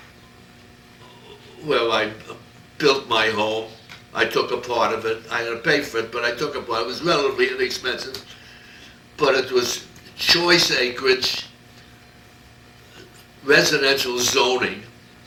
where I built my home. I took a part of it. I had to pay for it, but I took a part. It was relatively inexpensive, but it was choice acreage, residential zoning,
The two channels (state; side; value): identical; both; correlation 1.00